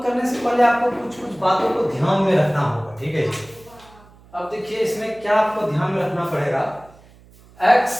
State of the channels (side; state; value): right; noise; hum, 26 dB below the sound